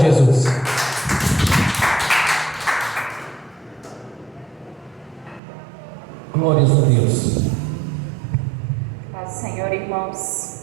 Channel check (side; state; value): left; drops out; at 5.4 s